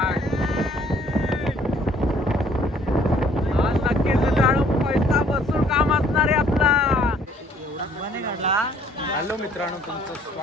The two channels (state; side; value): normal; both; correlation 0.60